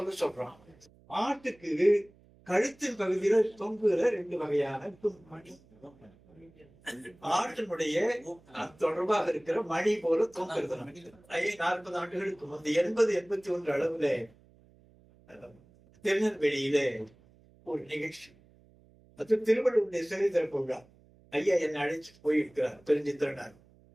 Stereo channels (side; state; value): right; noise; hum, 28 dB below the sound